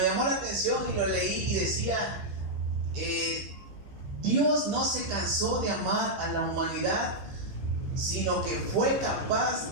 llamó la atención y lo leí, y decía, Dios no se cansó de amar a la humanidad, sino que fue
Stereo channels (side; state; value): left; late; 15 ms